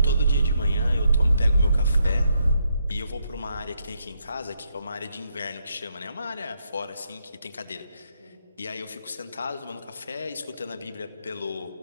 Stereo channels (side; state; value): both; inverted; correlation -0.77